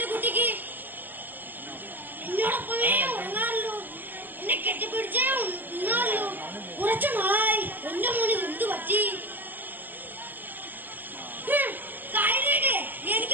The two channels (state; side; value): late; left; 0.088 ms